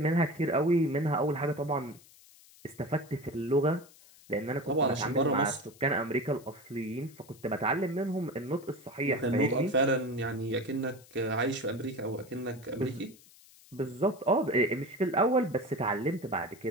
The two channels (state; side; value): noise; left; hiss, 24 dB below the sound